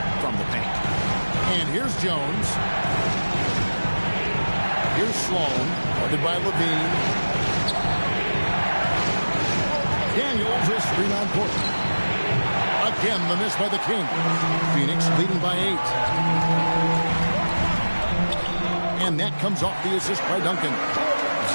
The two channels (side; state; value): both; inverted; correlation -1.00